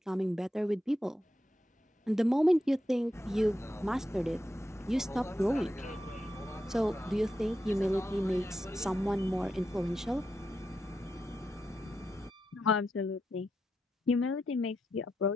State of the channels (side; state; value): both; normal; correlation 0.86